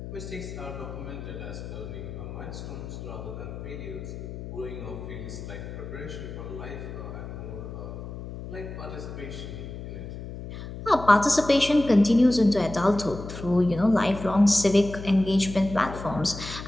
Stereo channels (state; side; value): noise; left; hum, 10 dB below the sound